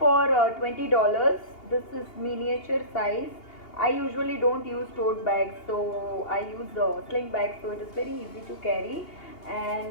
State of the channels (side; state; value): right; late; 2.8 ms